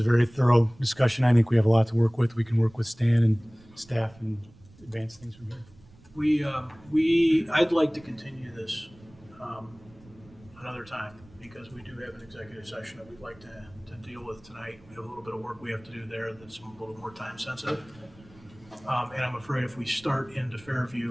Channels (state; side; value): noise; right; rumble, 25 dB below the sound